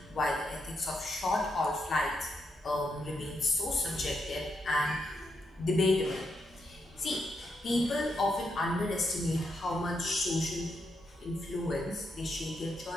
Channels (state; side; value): normal; both; correlation 0.82